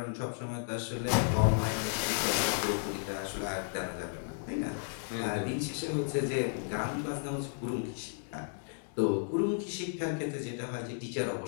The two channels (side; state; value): right; silent; digital silence